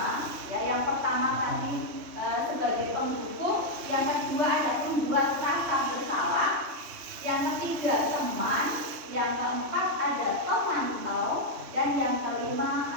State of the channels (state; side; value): late; left; 3.1 ms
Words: Ya, yang pertama tadi sebagai pendukung, yang kedua ada pembuat rasa bersalah, yang ketiga teman, yang keempat ada pemantau, dan yang kelima